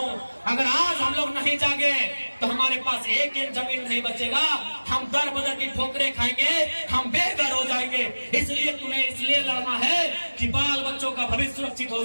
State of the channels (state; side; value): inverted; both; correlation -1.00